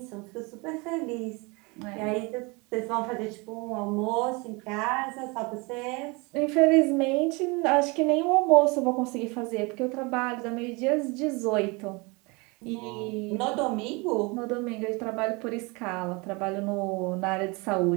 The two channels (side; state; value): left; quieter; 27.5 dB